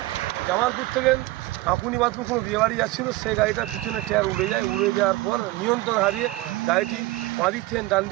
জামালপুর থেকে আকুনিবাদপুর কোনো বিয়ে বাড়ি যাচ্ছিল, সেই গাড়িটার পিছনে টায়ার উড়ে যায়। উড়ে যাওয়ার পর নিয়ন্ত্রণ হারিয়ে গাড়িটি বাঁদিক থেকে ডান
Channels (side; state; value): left; quieter; 18.8 dB